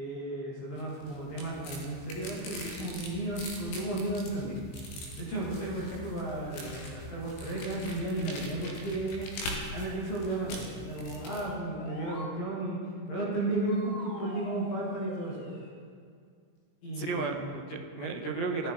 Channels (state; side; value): late; right; 20 ms